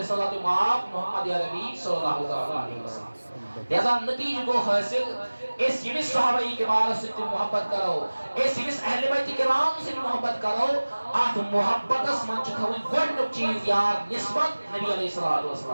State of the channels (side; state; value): both; inverted; correlation -1.00